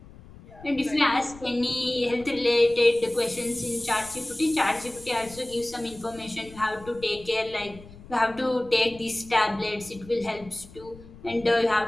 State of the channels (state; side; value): noise; left; rumble, 20 dB below the sound